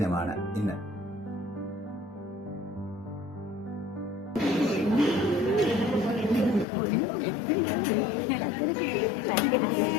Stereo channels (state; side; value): drops out; right; at 6.7 s